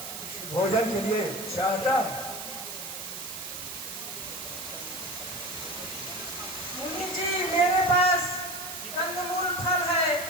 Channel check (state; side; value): noise; right; hiss, 8 dB below the sound